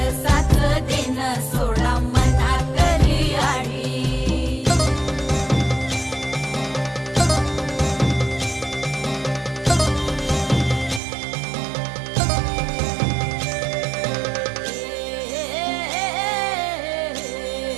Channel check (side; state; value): left; drops out; at 11.0 s